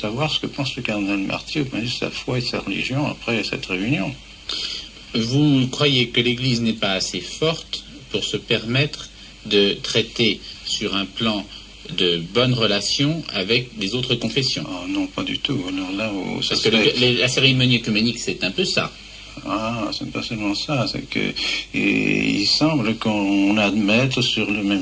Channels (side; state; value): both; identical; correlation 1.00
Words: ce que pense le cardinal Marty au point de vue de sa foi et de sa religion après cette réunion. Vous croyez que l'Église n'est pas assez forte pour se permettre de traiter sur un plan de bonnes relations avec les autres confessions? Oh, non, pas du tout. Alors là, parce que la cérémonie œcuménique, c'est un peu ça. Ah, c'est pas seulement ça, c'est que il semble qu'on admette sur le